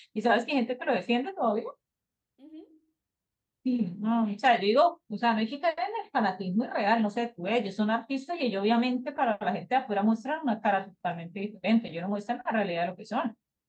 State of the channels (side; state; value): both; identical; correlation 1.00